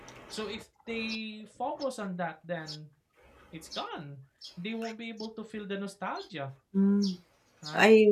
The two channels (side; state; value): both; identical; correlation 1.00